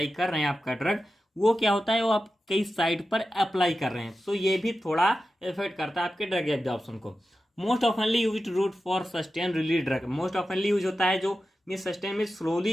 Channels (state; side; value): normal; both; correlation 0.92